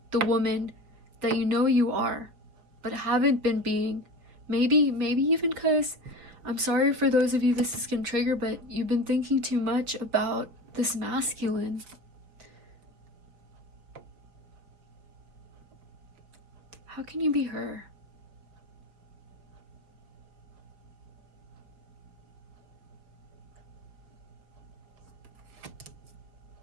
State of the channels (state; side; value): late; left; 5.7 ms